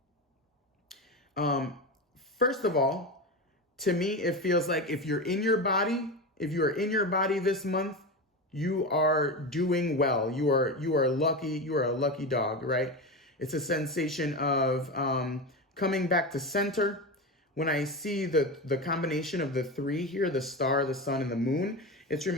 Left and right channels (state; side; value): normal; both; correlation 0.21